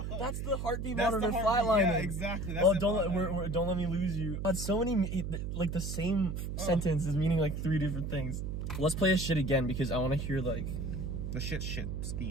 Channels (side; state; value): right; noise; hum, 4 dB below the sound